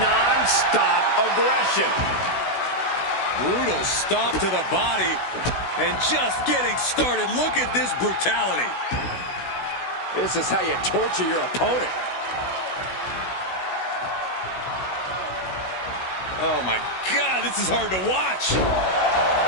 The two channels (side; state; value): right; late; 16 ms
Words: aggression. Brutal stomp to the body. And just getting started. Look at this brutality. This is how you torture your opponent. Oh my God, this is hard to watch.